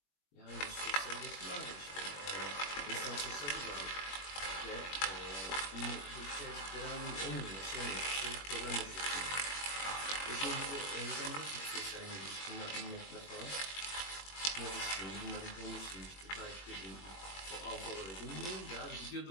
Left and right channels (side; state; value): right; late; 21 ms